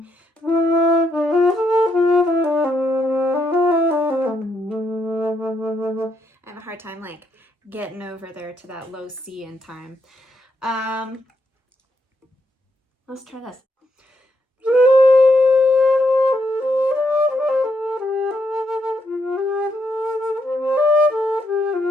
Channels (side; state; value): both; normal; correlation 0.78